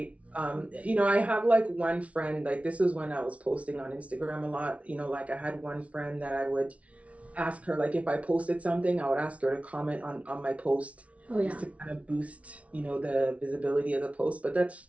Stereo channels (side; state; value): left; late; 0.064 ms